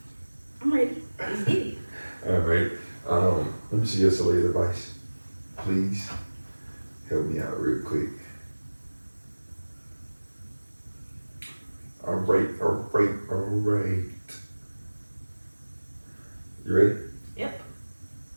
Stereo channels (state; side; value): inverted; both; correlation -1.00